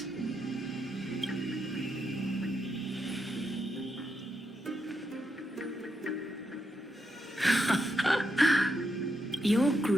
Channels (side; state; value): both; normal; correlation 0.82